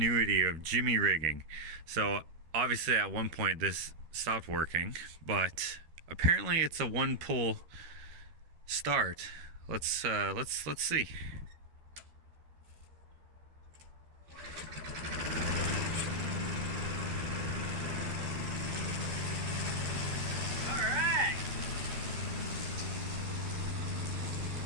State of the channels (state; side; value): late; left; 13 ms